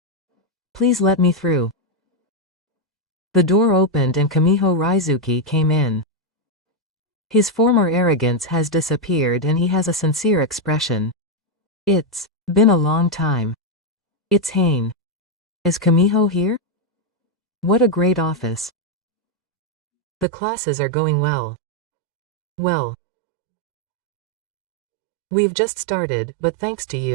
Please let me through. The door opened and Kamiho Raizuki came in. His former arrogance has disappeared and he has a sincere expression. It's been a long time. It's Hane. Is Kamiho here? What a great office. The classes are going well. Well. We've just started, but thanks to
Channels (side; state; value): left; drops out; at 20.2 s